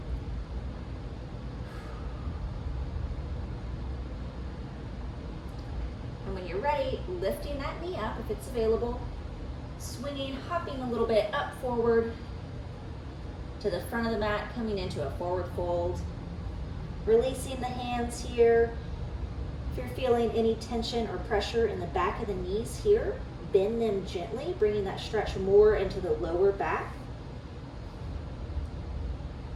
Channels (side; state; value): both; identical; correlation 1.00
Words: you're ready, lifting that knee up if it's available, swinging, hopping a little bit up forward to the front of the mat, coming into a forward fold. Releasing the hands here. If you're feeling any tension or pressure in the back of the knees here, bend them gently, bringing that stretch more into the lower back.